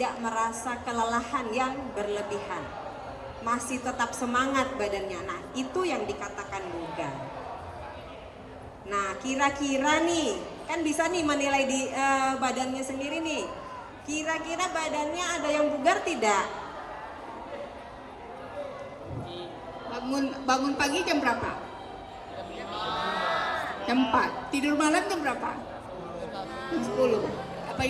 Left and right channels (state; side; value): identical; both; correlation 1.00